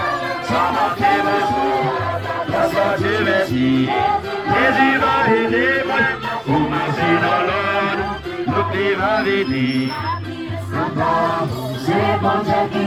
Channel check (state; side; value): noise; left; rumble, 29 dB below the sound